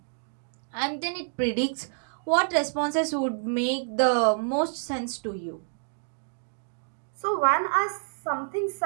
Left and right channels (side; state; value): left; silent; digital silence